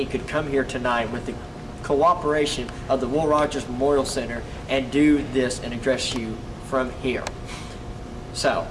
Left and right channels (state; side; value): identical; both; correlation 1.00